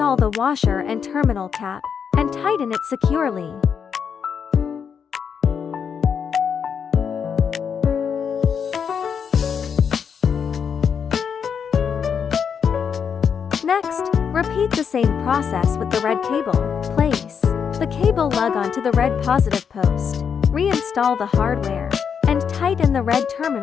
the washer and terminal cap, and tighten it securely. Next, repeat the same process with the red cable. Place the cable lug onto the red positive post. Reinstall the hardware, and tighten the red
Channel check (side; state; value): right; quieter; 7.0 dB